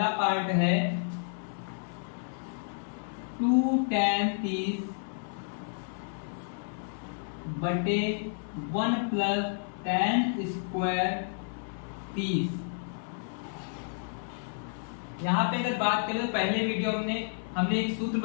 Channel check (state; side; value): silent; right; 57 dB below the other